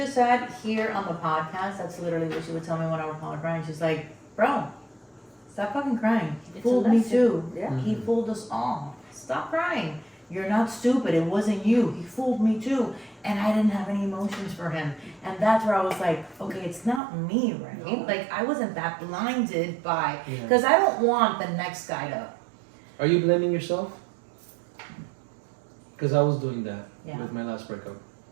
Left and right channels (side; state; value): left; drops out; at 17.0 s